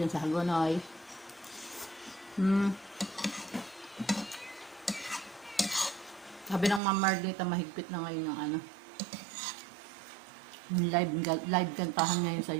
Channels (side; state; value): left; drops out; at 6.8 s